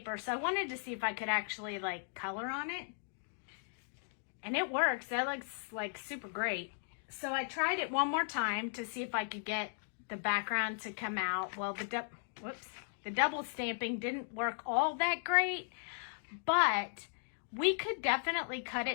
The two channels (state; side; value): silent; right; digital silence